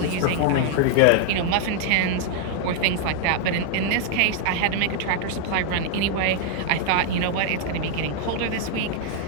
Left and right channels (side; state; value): both; different; correlation 0.00